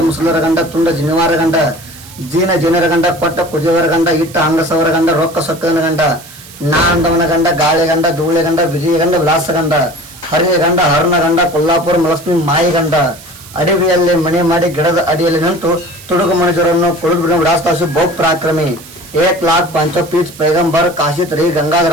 ಮುಸುಲರ ಗಂಡ ತುಂಡ ಜಿನಿವಾರ ಗಂಡ ಜನರ ಗಂಡ ಕೊಟ್ಟ ಕುದಿಯವರ ಗಂಡ ಇಟ್ಟ ಅಂಗಸವರ ಗಂಡ ರೊಕ್ಕ ಸೊಕ್ಕನ ಗಂಡ ನಾ ಅಂದವನ ಗಂಡ ಗಾಳಿ ಗಂಡ ಧೂಳೆ ಗಂಡ ವಿಜಯ ಗಂಡ ವಿಲಾಸ ಗಂಡ ಹರಿಯ ಗಂಡ ಹರಣ ಗಂಡ ಕೊಲ್ಲಾಪುರ ಮಲಕ್ಷ್ಮಿ ಮಾಯಿ ಗಂಡ. ಅಡವಿಯಲ್ಲಿ ಮನೆ ಮಾಡಿ ಗಿಡದ ಅಡಿಯಲ್ಲಿ ನಿಂತು ತುಡುಗು ಮನುಷ್ಯರನ್ನು ಕುಳಿದು ವಿಳಾಸದಾಸು ಬಹು ಪರಾಕ್ರಮಿ. 1,05 ಪೀಠ ಪೈಗಂಬರ್ ಕಾಶಿತ್ ರೀ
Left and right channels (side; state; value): right; noise; hiss, 19 dB below the sound